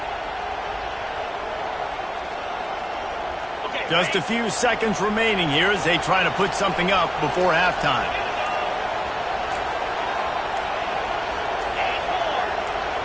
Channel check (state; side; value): identical; both; correlation 1.00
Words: Just a few seconds remaining here as they try to put something up before halftime.